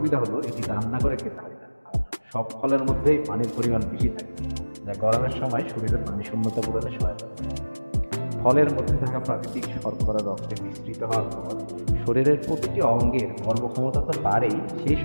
হলো এটি রান্না করে খেতে হয় না। আর সব ফলের মধ্যেই পানির পরিমাণ বেশি থাকে, যা গরমের সময় শরীরে পানি শূন্যতা পূরণে সহায়তা করে। ফলের মধ্যে থাকা প্রাকৃতিক শর্করা রক্তে মিশ্রিত হওয়ার পর শরীরের প্রতিটি অঙ্গের কর্মক্ষমতা তো বাড়েই, সেই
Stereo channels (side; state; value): both; inverted; correlation -1.00